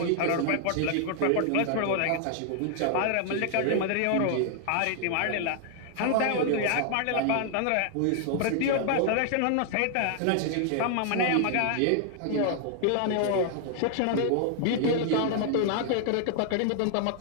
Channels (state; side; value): different; both; correlation 0.00